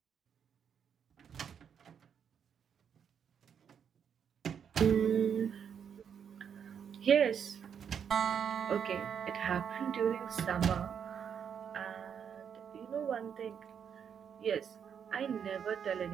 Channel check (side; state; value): left; quieter; 7.7 dB